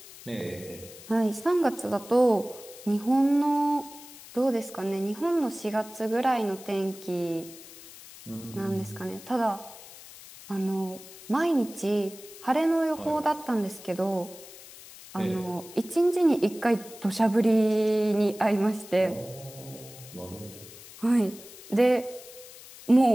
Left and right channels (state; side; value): noise; left; hiss, 18 dB below the sound